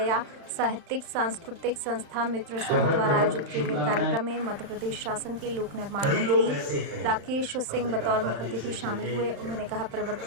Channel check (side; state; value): left; late; 35 ms